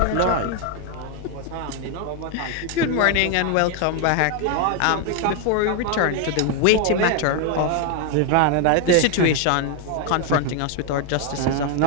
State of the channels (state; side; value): different; both; correlation 0.01